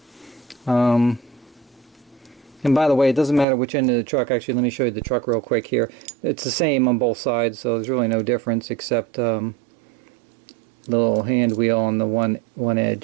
and by the way, it doesn't matter which end of the truck. Actually, let me show you the truck real quick here. It's the same on both sides, so there's really no difference except the little hand wheel on the one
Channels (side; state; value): left; drops out; at 3.5 s